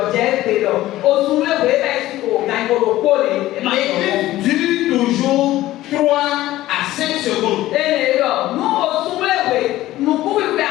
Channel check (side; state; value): right; quieter; 15.6 dB